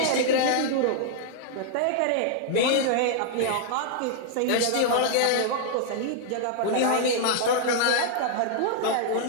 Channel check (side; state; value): both; different; correlation -0.01